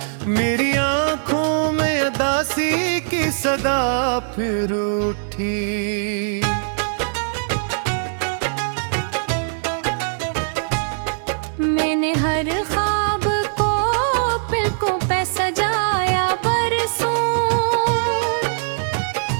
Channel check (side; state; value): left; silent; digital silence